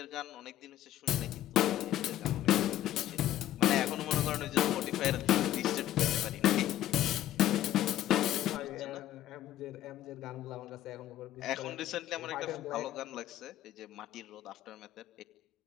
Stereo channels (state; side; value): quieter; right; 13.1 dB